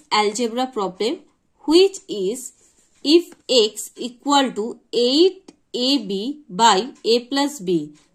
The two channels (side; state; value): both; identical; correlation 1.00